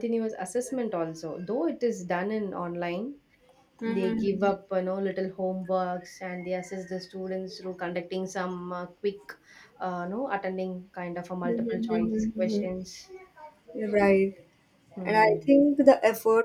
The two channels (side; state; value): both; identical; correlation 1.00